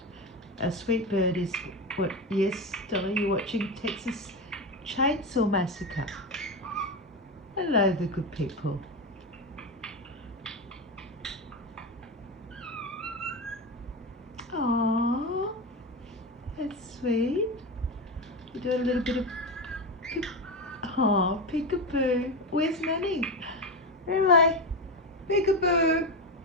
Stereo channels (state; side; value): normal; both; correlation 0.16